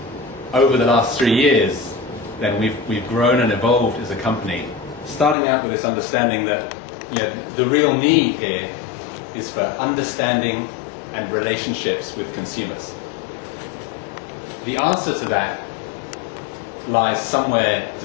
Over the last 3 years, then we've grown and evolved as a company, starting out with this understanding that the real need here is for understanding and relationships with consumers. The answer to that lies somewhere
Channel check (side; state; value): right; drops out; at 5.4 s